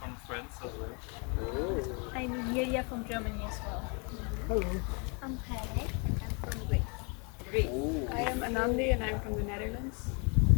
France as well. I'm Yulia from Germany as well. Hello. I'm Haley. I'm from Greece. I am Anandi and I'm from the Netherlands.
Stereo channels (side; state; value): right; quieter; 34.5 dB